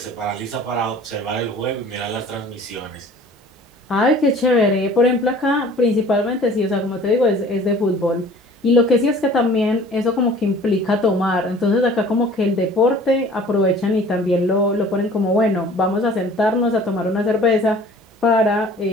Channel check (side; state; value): both; normal; correlation 0.48